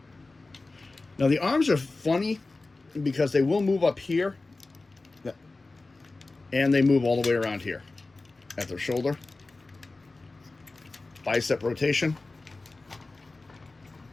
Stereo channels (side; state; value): right; quieter; 3.4 dB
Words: Now the arms are funny because they will move up here, and they move all the way around here at their shoulder. Bicep rotation.